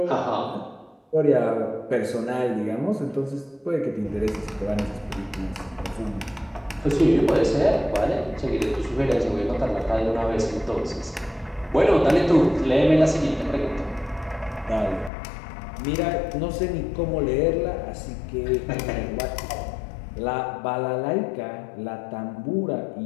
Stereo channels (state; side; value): drops out; right; at 15.1 s